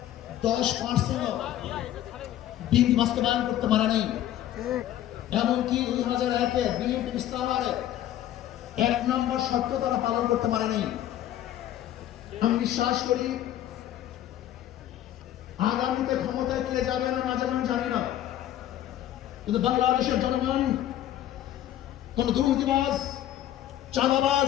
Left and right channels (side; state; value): right; quieter; 12.4 dB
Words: 10% বিএনপি বাস্তবায়ন করতে পারে নাই। এমনকি 2001-এ বিএনপি ইশতেহারে 1 নম্বর শর্ত তারা পালন করতে পারে নাই। আমি বিশ্বাস করি আগামীতে ক্ষমতায় কে যাবে না না যাবে আমি জানি না, কিন্তু বাংলাদেশের জনগণ কোন দুর্নীতিবাজ,